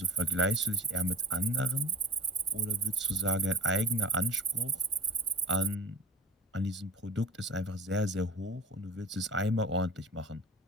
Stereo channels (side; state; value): both; normal; correlation 0.33